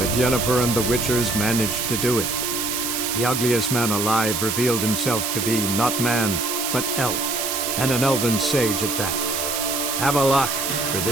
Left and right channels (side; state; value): right; noise; hiss, 1 dB below the sound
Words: Yennefer and the Witchers managed to do it. The ugliest man alive revealed himself to be not man, but elf, and an elven sage at that. Avalach, for